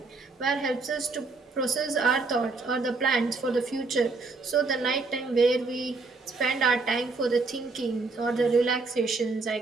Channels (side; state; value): left; quieter; 3.9 dB